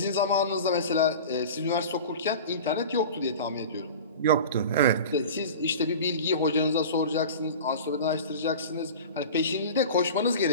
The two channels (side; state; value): both; inverted; correlation -0.35